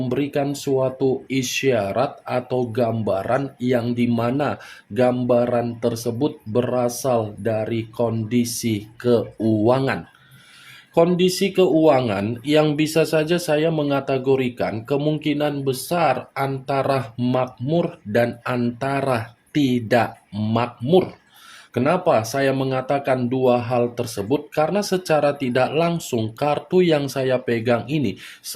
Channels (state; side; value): identical; both; correlation 1.00